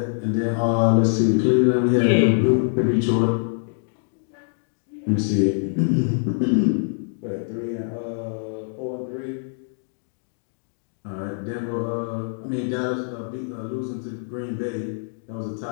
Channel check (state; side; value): silent; right; digital silence